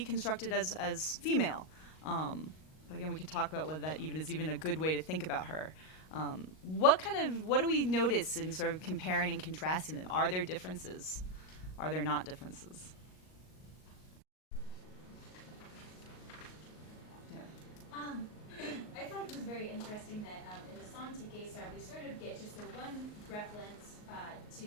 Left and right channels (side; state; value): right; late; 38 ms